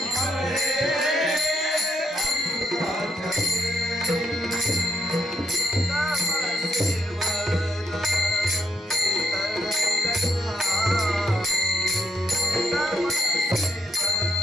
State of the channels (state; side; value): normal; both; correlation 0.74